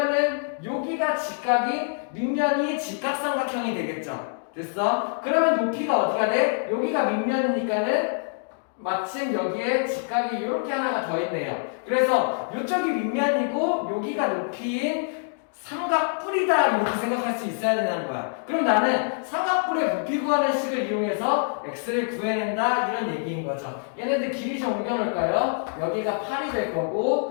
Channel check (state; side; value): silent; right; digital silence